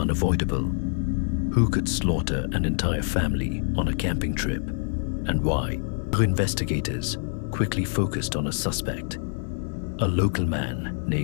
Who could slaughter an entire family on a camping trip, and why? Investigators quickly focused on a suspect, a local man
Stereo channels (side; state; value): right; silent; 57 dB below the other